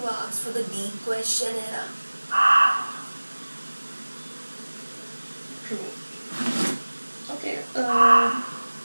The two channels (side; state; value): both; inverted; correlation -1.00